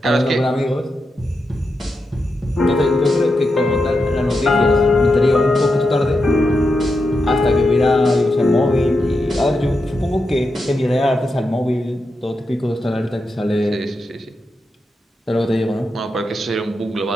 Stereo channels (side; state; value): both; normal; correlation 0.87